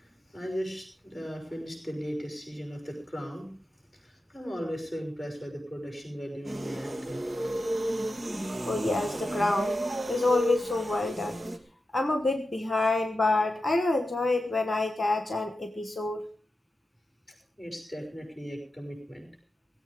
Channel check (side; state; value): both; normal; correlation 0.91